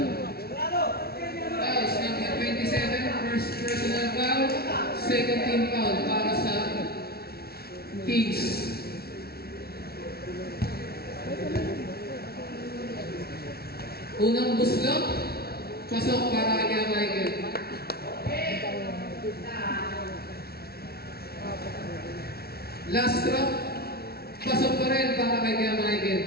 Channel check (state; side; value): late; right; 0.45 ms